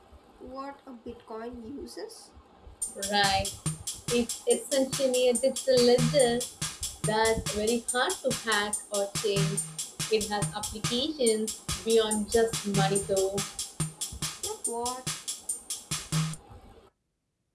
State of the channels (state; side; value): identical; both; correlation 1.00